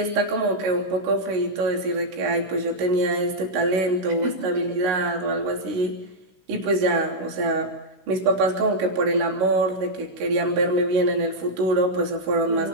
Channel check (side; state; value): left; late; 16 ms